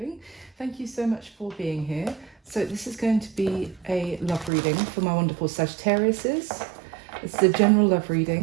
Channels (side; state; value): left; drops out; at 4.5 s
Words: Thank you so much for being here. So this is going to be a love reading for my wonderful Sagittariuses. It's a general love